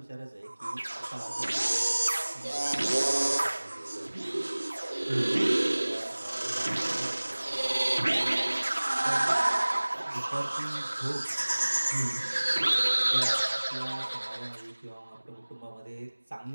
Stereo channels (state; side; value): inverted; both; correlation -1.00